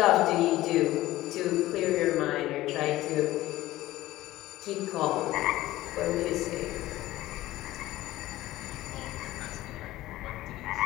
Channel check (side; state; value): right; quieter; 16.3 dB